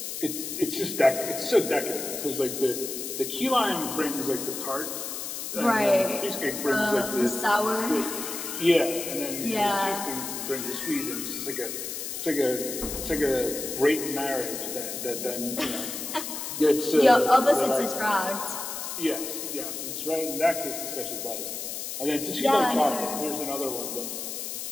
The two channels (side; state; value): left; noise; hiss, 6 dB below the sound